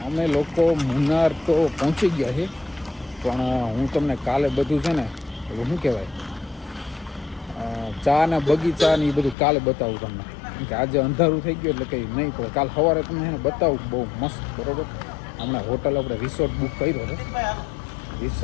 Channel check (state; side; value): drops out; right; at 9.3 s